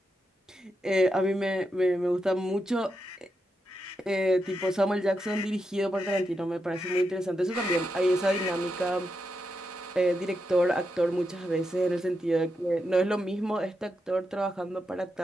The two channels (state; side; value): normal; both; correlation 0.85